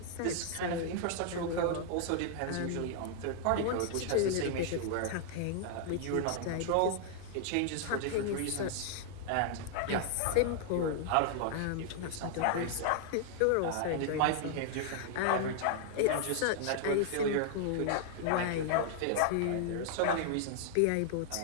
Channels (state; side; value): different; both; correlation -0.01